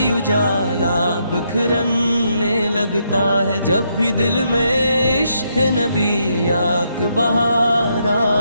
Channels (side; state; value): both; inverted; correlation -0.77